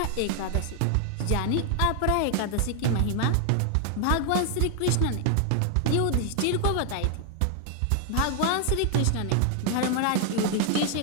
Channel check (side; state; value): both; different; correlation 0.00